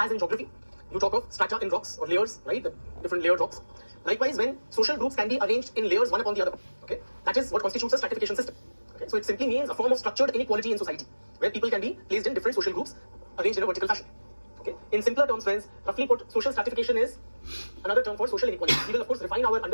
in geography, you talk of strata in rocks or layers, right? The different layered rocks. Likewise, when social groups can be arranged in layers one upon the other, okay, that is what constitutes a stratification system. Okay? So it simply means a form of structured inequality in society, where people can be placed in different social groups arranged in a vertical fashion. Okay? In simpler terms, friends, roughly put, social stratification is another term for social inequality. We will of course refine our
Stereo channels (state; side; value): inverted; both; correlation -1.00